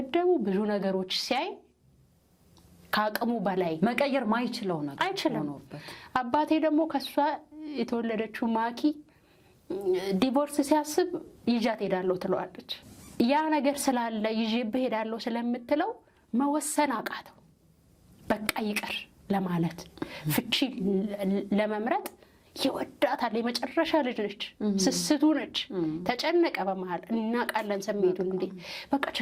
ብዙ ነገሮች ሲያይ ካቀሙ በላይ መቀየር ማይችለው ነገር አይችልም አባቴ ደግሞ ከሷ የተወለደችው ማኪ ዲቮርስ ሲያስብ ይጃት ሄዳለሁ ትለዋለች ያ ነገር ስላለ ይዤብህ ሄዳለሁ ስለምትለው መወሰን አቃተው በቃ ይቀር ለማለት ፍቺ ለመምረጥ ይወዳታል የመጨረሻ ልጅ ነች ስስቱ ነች ተጨነቀ በመሃል እናቃለን ስሜቱን እንዴ በቃ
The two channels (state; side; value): identical; both; correlation 1.00